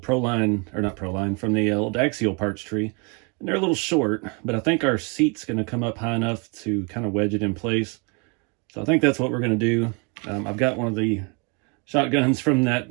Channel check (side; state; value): left; quieter; 33.0 dB